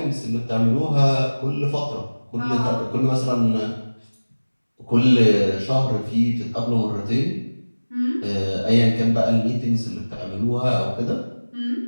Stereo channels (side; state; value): both; inverted; correlation -1.00